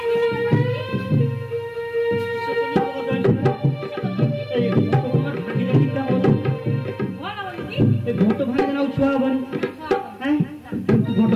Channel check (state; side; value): identical; both; correlation 1.00